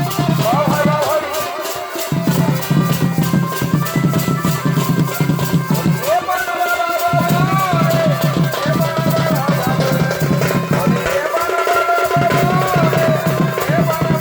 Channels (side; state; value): both; identical; correlation 1.00